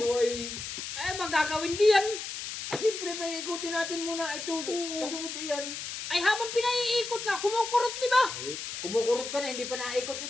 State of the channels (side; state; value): left; noise; hiss, 7 dB below the sound